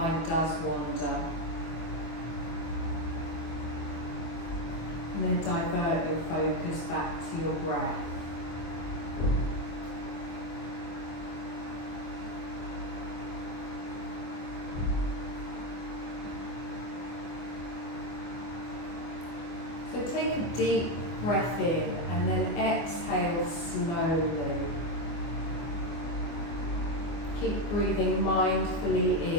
does wander. And then divert your focus back to your breath. So take a deep breath in and then exhale slowly. Keep breathing mindfully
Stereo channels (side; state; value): right; late; 24 ms